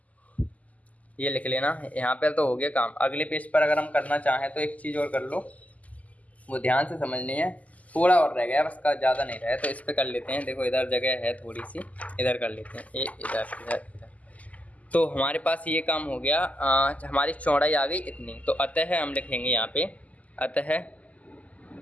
ये लिख लेना, यहाँ पे तो हो गया काम। अगले पेज पर अगर हम करना चाहें तो एक चीज़ और कर लो, वो ध्यान से समझनी है, थोड़ा और रह गया बस का, ज़्यादा नहीं रहा है, तो इस पर कर लेते हैं। देखो इधर जगह है थोड़ी सी, इधर कर लेते हैं, ये इधर इधर इधर। तो हमारे पास ये काम हो गया, हमारी चौड़ाई आ गई इतनी। तो अतः हम लिखेंगे यहाँ पे, अतः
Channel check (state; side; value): late; right; 0.074 ms